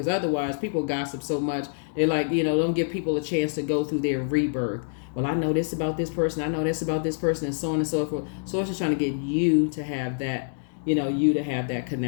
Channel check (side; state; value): right; silent; digital silence